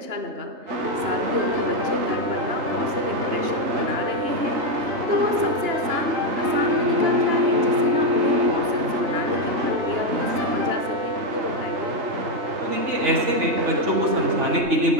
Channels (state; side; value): late; left; 3.2 ms